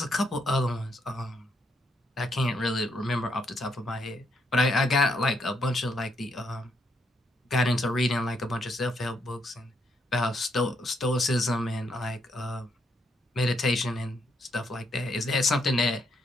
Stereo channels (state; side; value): normal; both; correlation 0.76